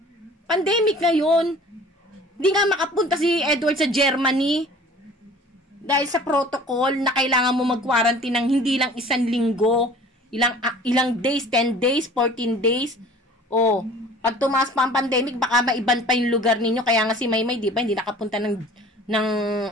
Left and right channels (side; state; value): both; normal; correlation 0.47